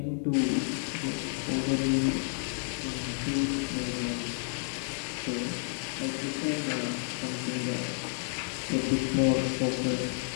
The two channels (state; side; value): silent; right; 56 dB below the other